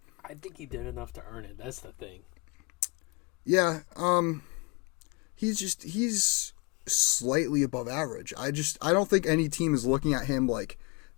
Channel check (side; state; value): right; quieter; 29.8 dB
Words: think he did enough to earn it. That's the thing. Yeah, he's slightly above average. I don't think any team is looking at him like,